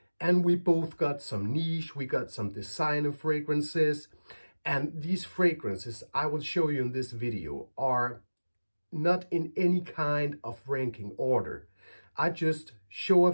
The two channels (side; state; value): both; inverted; correlation -1.00